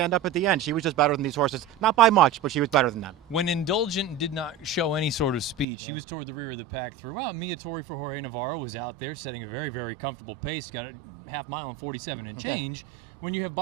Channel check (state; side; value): drops out; left; at 5.7 s